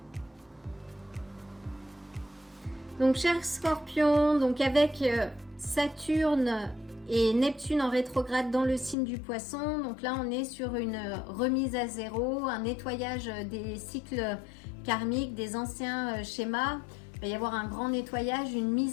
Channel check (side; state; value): right; drops out; at 9.0 s